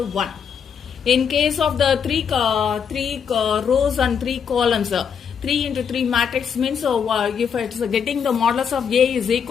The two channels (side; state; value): right; quieter; 7.1 dB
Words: 1. In case of the three rows and 3 columns, 3 into 3 matrix means if it's getting the modulus of A is